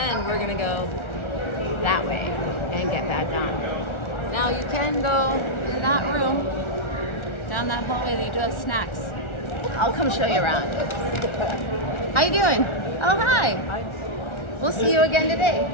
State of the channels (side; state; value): right; late; 1.4 ms